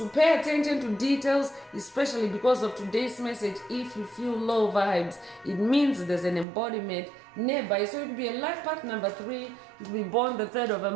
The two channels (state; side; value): drops out; left; at 6.5 s